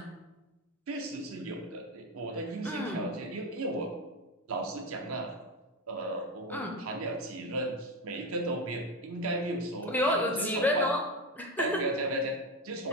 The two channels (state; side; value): normal; both; correlation 0.17